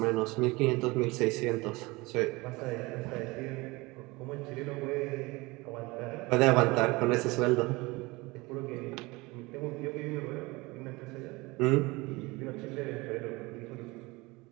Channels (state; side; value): quieter; left; 23.3 dB